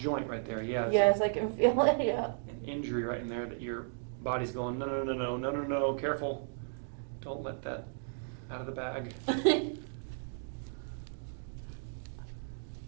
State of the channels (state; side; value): silent; left; digital silence